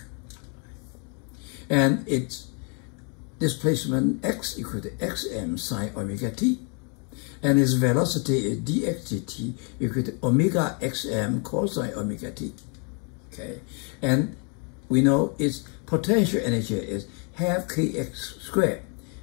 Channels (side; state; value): right; quieter; 37.0 dB